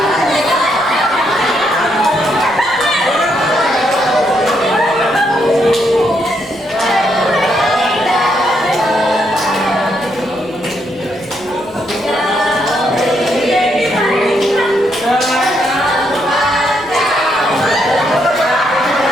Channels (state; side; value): noise; left; rumble, 27 dB below the sound